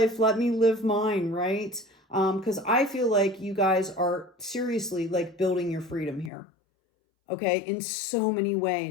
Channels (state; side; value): drops out; right; at 6.3 s